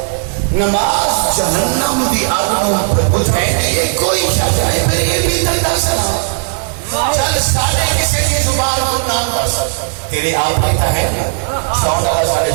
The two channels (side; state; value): left; silent; 66 dB below the other